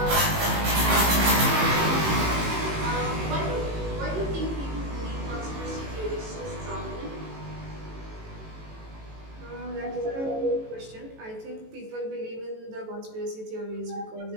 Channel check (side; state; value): left; late; 18 ms